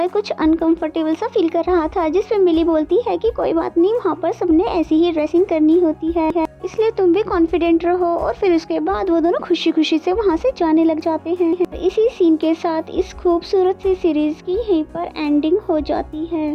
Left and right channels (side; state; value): both; identical; correlation 1.00